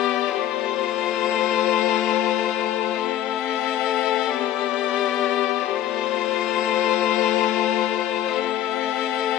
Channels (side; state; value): right; quieter; 12.0 dB